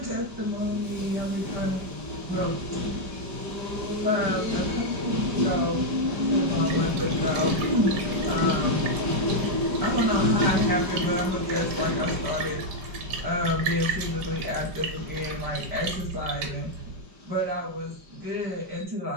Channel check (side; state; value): left; late; 5.0 ms